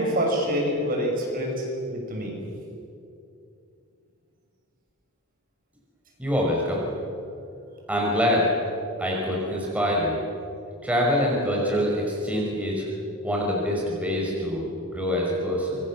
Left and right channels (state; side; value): normal; both; correlation 0.26